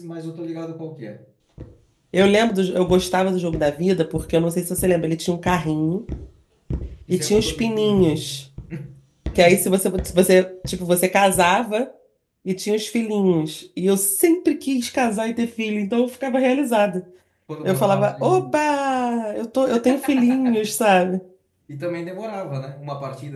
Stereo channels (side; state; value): both; identical; correlation 1.00